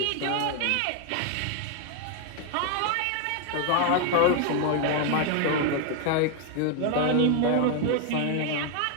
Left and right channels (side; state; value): both; different; correlation 0.01